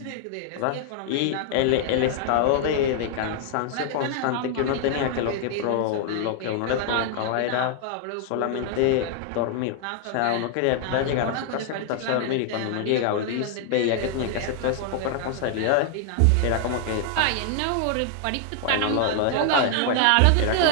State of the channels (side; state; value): both; different; correlation 0.00